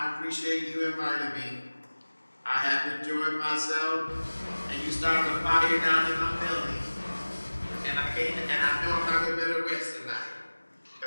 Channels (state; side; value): inverted; both; correlation -1.00